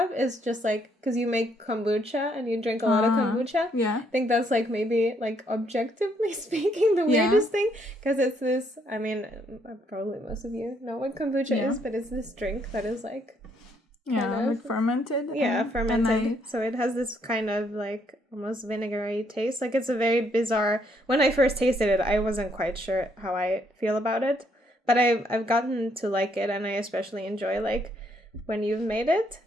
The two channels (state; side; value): normal; both; correlation 0.71